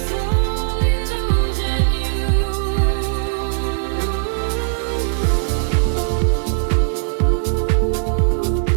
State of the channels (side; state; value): left; silent; digital silence